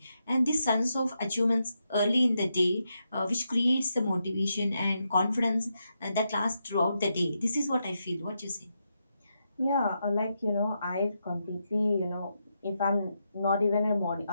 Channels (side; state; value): both; inverted; correlation -0.83